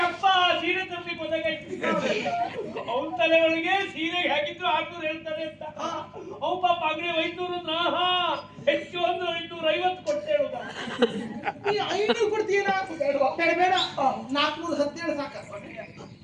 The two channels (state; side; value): identical; both; correlation 1.00